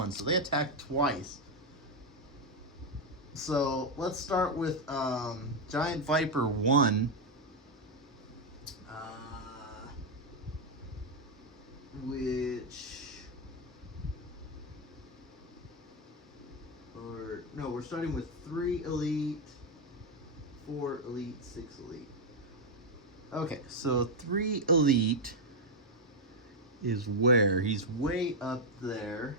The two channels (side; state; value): both; normal; correlation 0.02